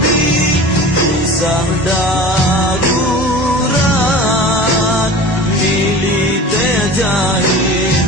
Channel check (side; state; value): both; normal; correlation 0.37